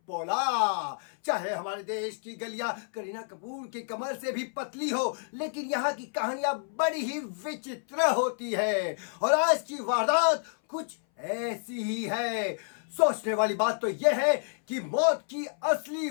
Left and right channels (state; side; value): silent; right; 58 dB below the other